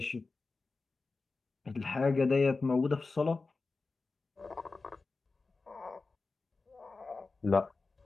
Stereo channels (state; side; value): quieter; right; 3.9 dB